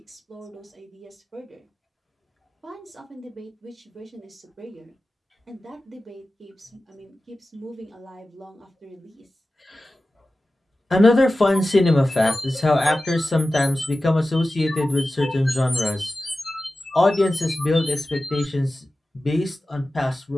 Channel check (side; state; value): both; normal; correlation 0.95